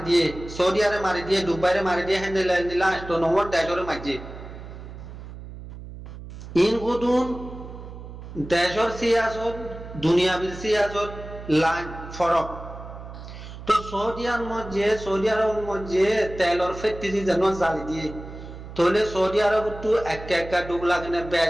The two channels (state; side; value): noise; right; hum, 13 dB below the sound